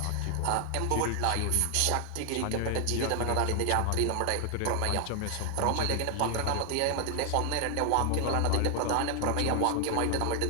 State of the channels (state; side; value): different; both; correlation 0.00